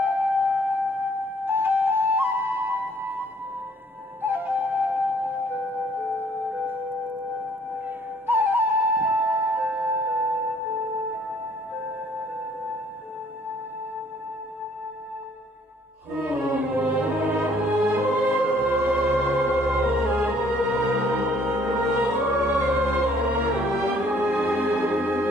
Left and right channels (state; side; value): normal; both; correlation 0.61